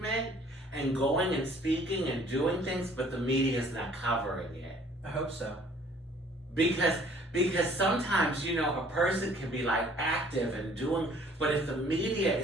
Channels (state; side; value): normal; both; correlation 0.56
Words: and going and speaking and doing things, but the media is not covering it. I hope so. Because sometimes, a person can be like active and doing, but if the media